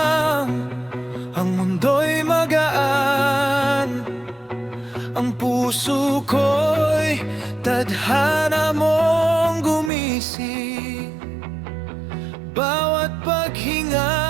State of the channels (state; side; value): drops out; left; at 9.9 s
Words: ang mundo'y magaan. Ang puso ko'y tadhana mong gumising. Bawat paghinga,